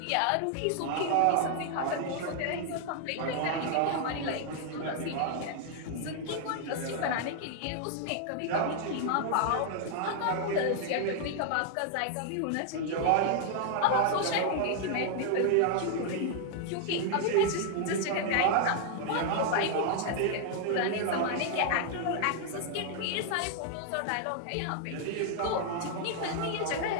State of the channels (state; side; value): different; both; correlation 0.00